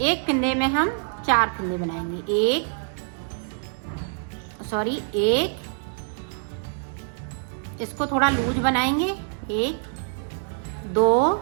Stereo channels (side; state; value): left; silent; digital silence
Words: एक फिंदे में हम 4 फिंदे बनाएंगे। एक, इसको थोड़ा लूज बनाएंगे। 1 2